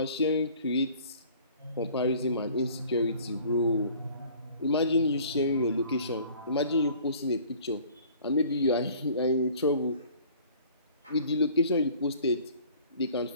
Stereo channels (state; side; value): inverted; both; correlation -0.51